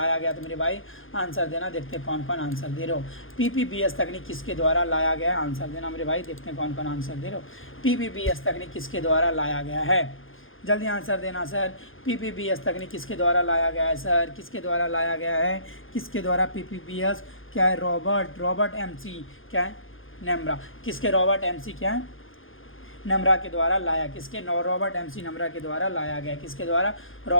गया, तो मेरे भाई आंसर देना। देखते हैं कौन कौन आंसर दे रहे हो। PPBS तकनीक किसके द्वारा लाया गया, आंसर देना मेरे भाई। देखते हैं कौन कौन आंसर दे रहे हो। PPBS तकनीक किसके द्वारा लाया गया है, जल्दी आंसर देना सर। PPBS तकनीक किसके द्वारा लाया गया है सर? किसके द्वारा लाया गया है? किसके द्वारा? PPBS क्या है? रॉबर्ट MC क्या है? नम्रा। किसके? रॉबर्ट MC क्या है? नम्रा के द्वारा लाया। किसके? रॉबर्ट MC नम्रा के द्वारा लाया गया। किसके द्वारा?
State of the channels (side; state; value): right; late; 0.59 ms